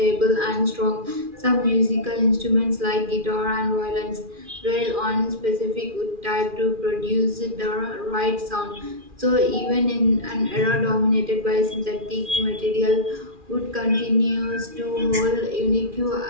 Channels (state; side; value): late; left; 2.4 ms